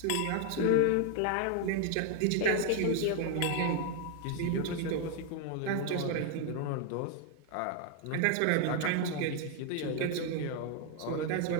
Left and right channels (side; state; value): both; different; correlation 0.00